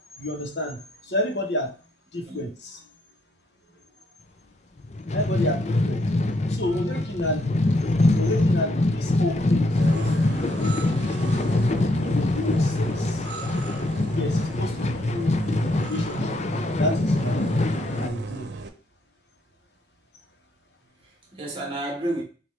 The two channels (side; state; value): both; normal; correlation 0.73